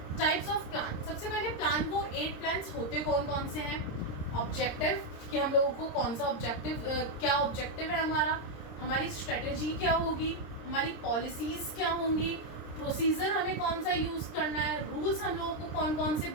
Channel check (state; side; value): late; right; 26 ms